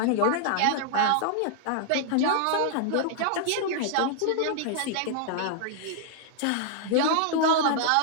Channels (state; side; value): different; both; correlation -0.01